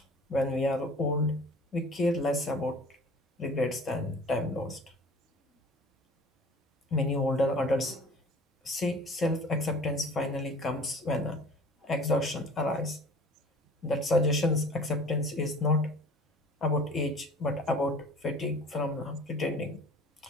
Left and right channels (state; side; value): normal; both; correlation 0.45